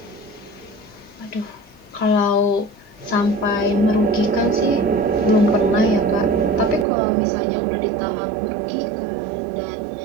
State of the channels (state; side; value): drops out; left; at 6.9 s